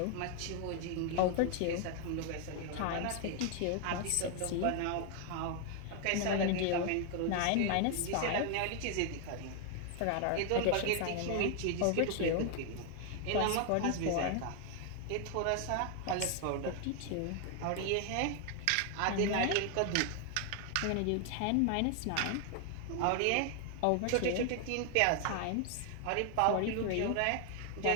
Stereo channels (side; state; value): both; different; correlation 0.00